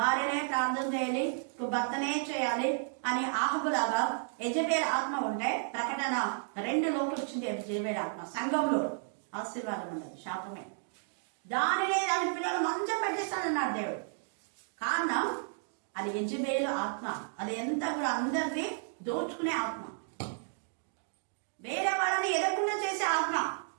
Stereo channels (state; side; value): silent; left; digital silence